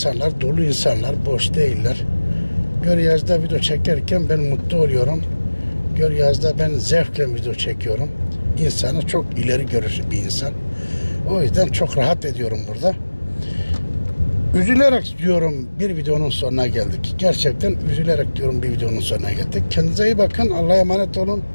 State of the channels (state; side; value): inverted; both; correlation -1.00